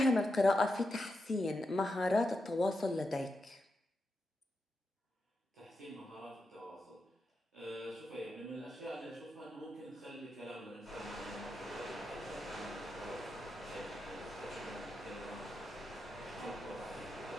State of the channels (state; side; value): normal; both; correlation 0.87